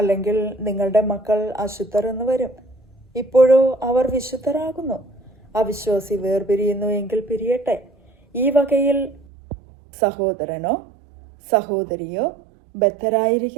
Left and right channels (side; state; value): left; drops out; at 9.2 s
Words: നിങ്ങളുടെ മക്കൾ അശുദ്ധർ എന്ന് വരും. ഇപ്പോഴോ അവർ വിശുദ്ധരാകുന്നു. അവിശ്വാസി വേർപിരിയുന്നു എങ്കിൽ പിരിയട്ടെ. ഈ വകയിൽ സഹോദരനോ സഹോദരിയോ